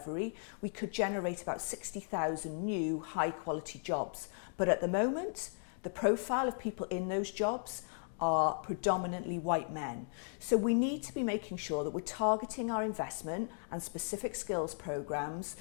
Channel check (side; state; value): right; silent; 54 dB below the other